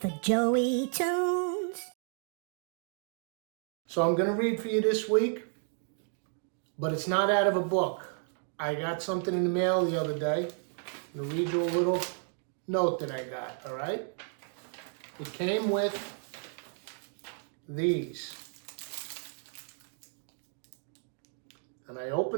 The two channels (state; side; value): silent; left; 56 dB below the other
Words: Joey Tunes. So I'm going to read for you this week, but it's not out of a book. I got something in the mail the other day. I'm going to read you a little note that I got, all right? It came with these. And I